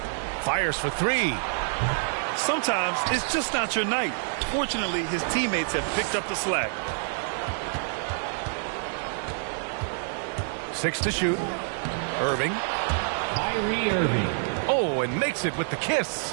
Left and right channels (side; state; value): left; silent; digital silence